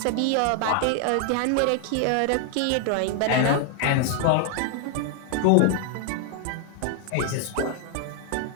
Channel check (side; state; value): both; different; correlation 0.00